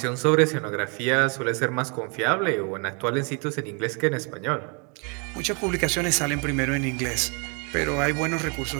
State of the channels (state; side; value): quieter; left; 35.0 dB